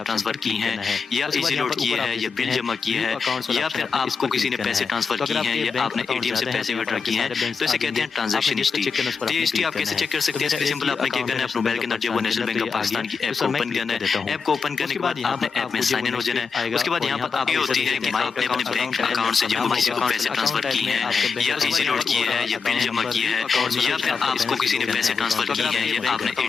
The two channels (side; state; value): right; quieter; 5.4 dB